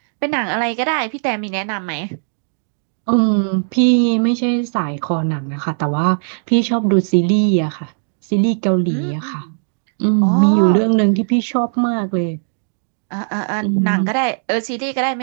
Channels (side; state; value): left; silent; digital silence